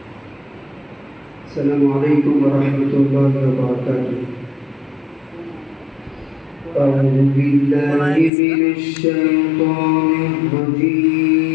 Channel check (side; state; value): right; drops out; at 8.3 s